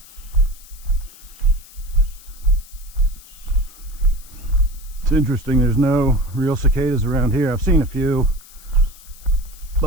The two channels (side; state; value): left; noise; hiss, 21 dB below the sound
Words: It's interesting, there's no real cicadas around here. I've seen a few,